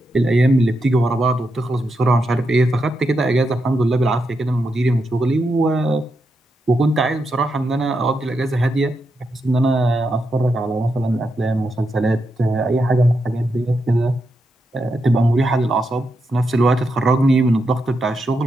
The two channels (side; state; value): both; normal; correlation 0.84